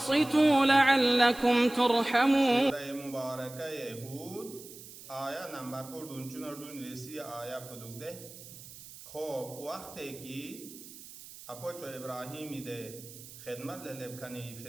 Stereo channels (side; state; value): right; noise; hiss, 16 dB below the sound